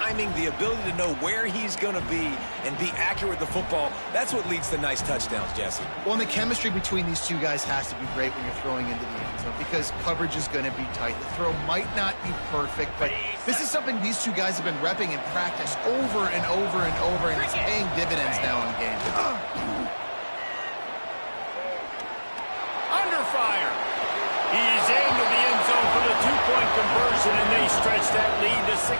the ability to know where he's going to be and be accurate with the football, that's what leads to nice touchdowns, Jesse. Well, and the chemistry between these two guys has to be great when you're throwing into the end zone because coverage is going to be tight. The throw might not be perfect, but this is something these two guys have been repping in practice over and over and over, and it's paying dividends now in games. Under fire. He's into the end zone for the 2-point conversion, and they stretch that lead to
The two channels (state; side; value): inverted; both; correlation -1.00